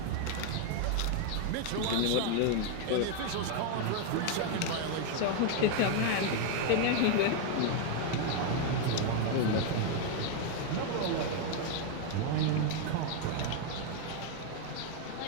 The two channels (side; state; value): both; different; correlation 0.01